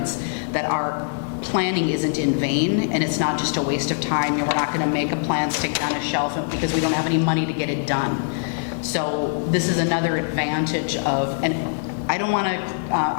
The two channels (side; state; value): right; silent; digital silence